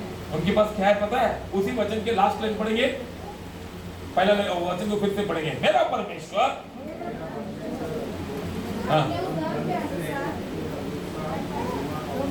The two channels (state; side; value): identical; both; correlation 1.00